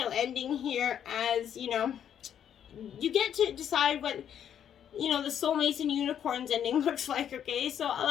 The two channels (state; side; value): quieter; right; 9.3 dB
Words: ending here as, you get to decide what, you know, the soulmates and unicorns ending looks like, okay? So